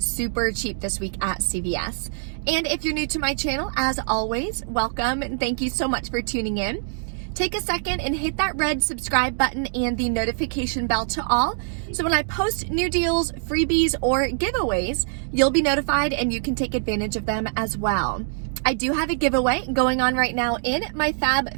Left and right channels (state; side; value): silent; left; digital silence